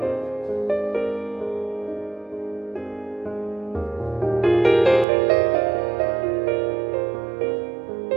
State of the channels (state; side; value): drops out; left; at 5.1 s